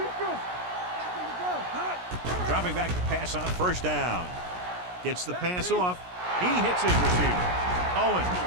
Back in the gun. Dropping back to pass on first down. Gets the pass off. He hits his receiver. Owen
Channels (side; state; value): left; late; 17 ms